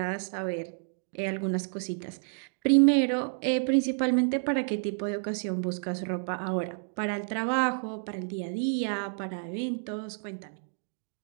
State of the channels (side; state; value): left; silent; digital silence